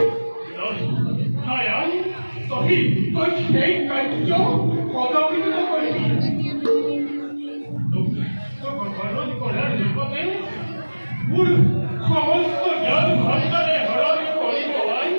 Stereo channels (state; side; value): inverted; both; correlation -1.00